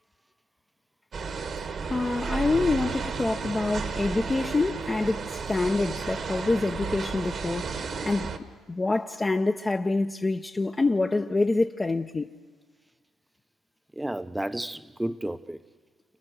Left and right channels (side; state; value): both; normal; correlation 0.93